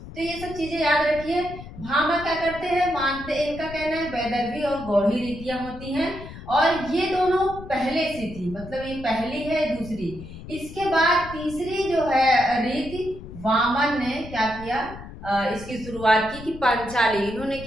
तो ये सब चीजें याद रखिए। भामा क्या करते हैं? मानते, इनका कहना है वैदर्भी और गौड़ी रीतियां होती हैं, और ये दोनों पहले से थी, मतलब ये पहली है, दूसरी। इसके बाद तीसरी जो है रीति, वामन ने क्या किया? इसकी शुरुआत की कि पांचाली। इन्होंने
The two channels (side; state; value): left; noise; rumble, 14 dB below the sound